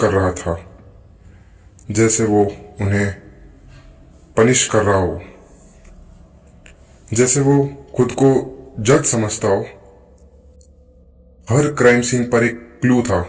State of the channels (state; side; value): identical; both; correlation 1.00